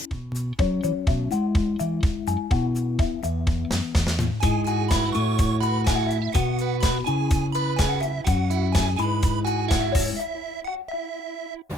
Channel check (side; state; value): both; normal; correlation 0.73